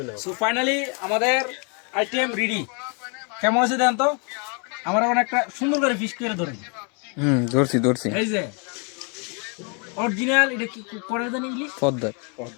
সো ফাইনালি আমাদের আইটেম রেডি কেমন আছে দেন তো আমরা একটা সুন্দর করে ফিশ করে ধরি ধরছি এই যে অরিজিনাল এটা কি করে জানি ইলিশ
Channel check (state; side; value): quieter; right; 36.2 dB